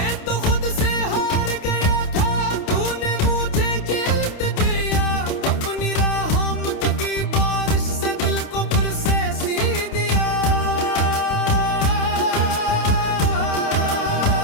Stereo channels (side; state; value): right; late; 28 ms